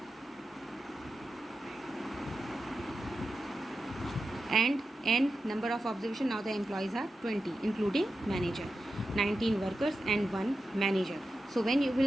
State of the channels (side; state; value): both; normal; correlation 0.91